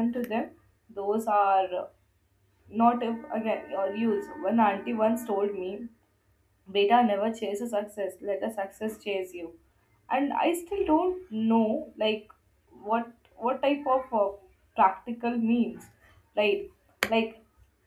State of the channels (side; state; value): both; identical; correlation 1.00